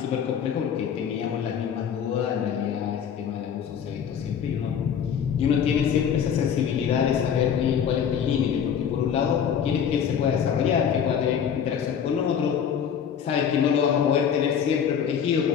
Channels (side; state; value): right; quieter; 8.0 dB